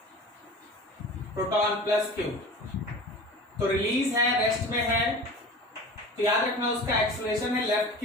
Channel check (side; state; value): both; normal; correlation 0.37